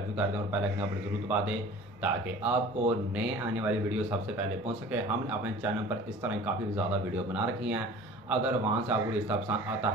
भी कर दें और बेल आइकन पर जरूर दबा दें ताकि आपको नए आने वाली वीडियो सबसे पहले पहुंच सके। हमने अपने चैनल पर इस तरह काफ़ी ज़्यादा वीडियो बना रखी हैं। अगर वहाँ से आपको रिश्ता पसंद आता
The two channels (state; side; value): normal; both; correlation 0.43